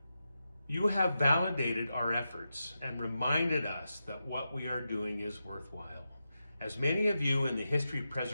You have validated our efforts and reminded us that what we are doing is worthwhile. As many of you in the history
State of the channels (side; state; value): both; inverted; correlation -0.89